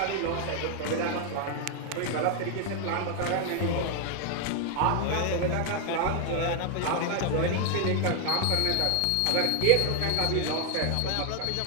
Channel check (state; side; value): different; both; correlation 0.00